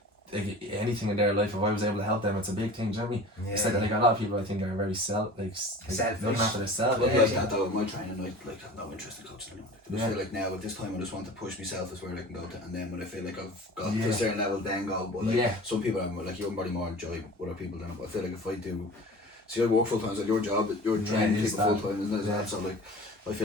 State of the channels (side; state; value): both; normal; correlation 0.40